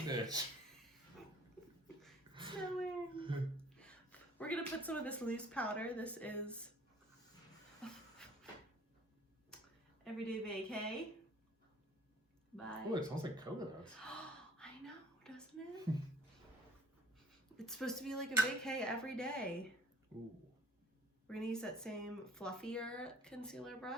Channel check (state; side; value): normal; both; correlation 0.53